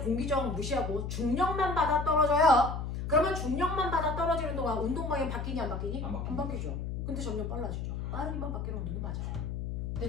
저항 무시하고 중력만 받아 떨어져요. 그러면 중력만 받아 떨어지는 동안 운동 방향 바뀌니 안 바뀌니? 안 바뀌죠. 근데 점점 빨라지죠. 빠르기만 바뀌는 운동이 맞아요.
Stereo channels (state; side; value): noise; left; hum, 4 dB below the sound